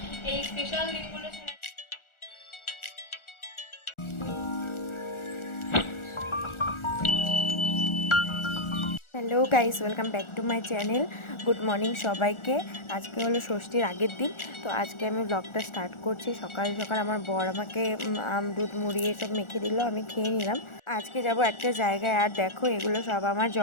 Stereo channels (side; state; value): right; late; 1.4 ms